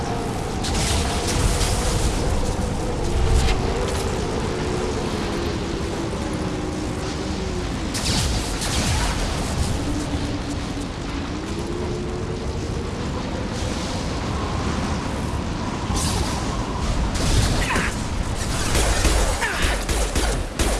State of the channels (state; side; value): identical; both; correlation 1.00